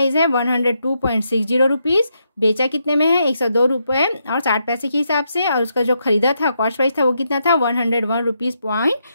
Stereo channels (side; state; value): both; inverted; correlation -0.80